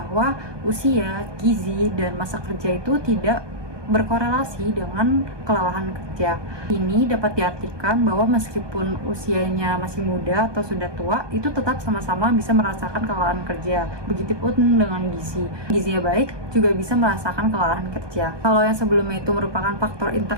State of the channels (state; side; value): late; left; 1.2 ms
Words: usia, gizi, dan masa kerja itu tidak berkorelasi dengan kelelahan kerja. Ini dapat diartikan bahwa meskipun usianya masih muda atau sudah tua, itu tetap sama-sama bisa merasakan kelelahan kerja. Begitupun dengan gizi. Gizinya baik juga bisa merasakan kelelahan kerja. Kalau yang sebelumnya itu merupakan faktor